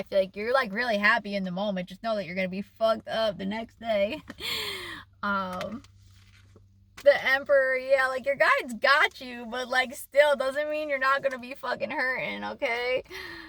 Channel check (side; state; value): both; identical; correlation 1.00